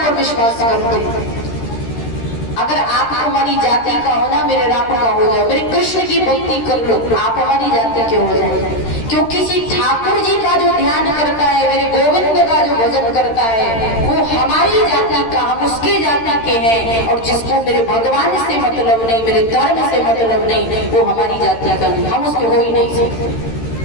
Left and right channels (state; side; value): late; right; 13 ms